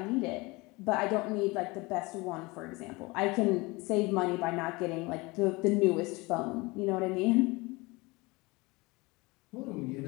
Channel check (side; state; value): right; quieter; 24.2 dB